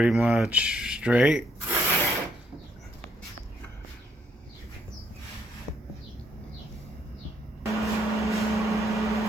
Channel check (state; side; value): normal; both; correlation 0.72